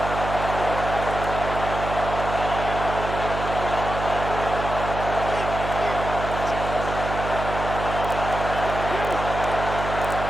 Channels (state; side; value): noise; right; hum, 6 dB below the sound